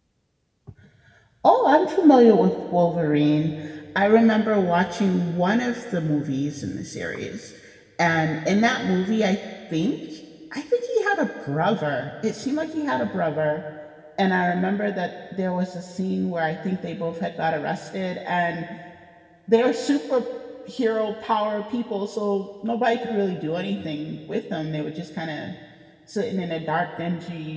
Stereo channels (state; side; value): identical; both; correlation 1.00